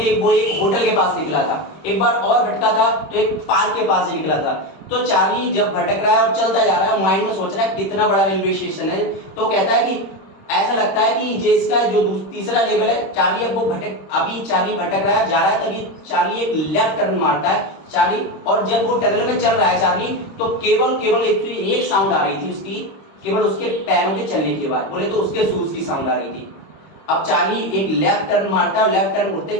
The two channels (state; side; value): late; right; 26 ms